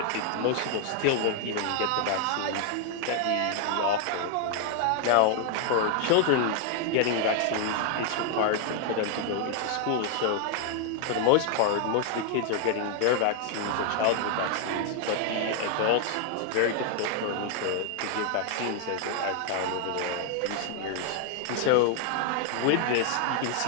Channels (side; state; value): both; different; correlation 0.00